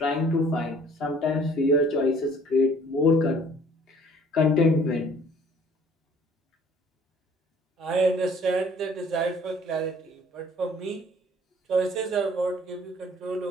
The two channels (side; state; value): both; normal; correlation 0.55